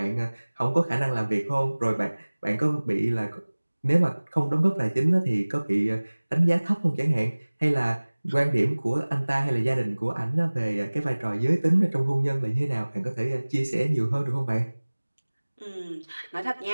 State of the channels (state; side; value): inverted; both; correlation -1.00